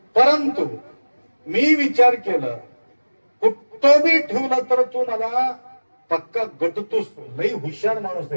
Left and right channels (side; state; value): both; inverted; correlation -1.00